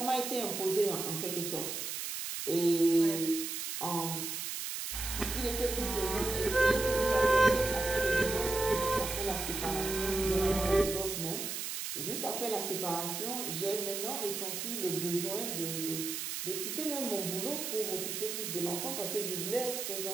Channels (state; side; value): noise; right; hiss, 4 dB below the sound